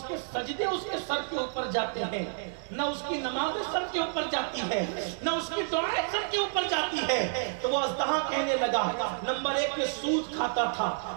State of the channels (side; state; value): left; silent; digital silence